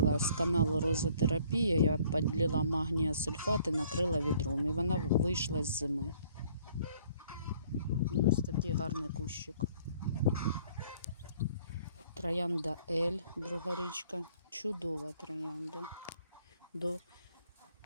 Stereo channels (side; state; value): both; inverted; correlation -0.59